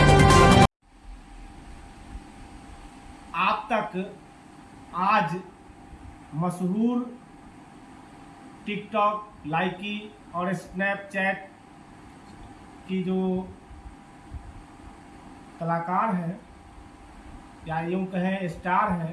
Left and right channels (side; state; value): both; identical; correlation 1.00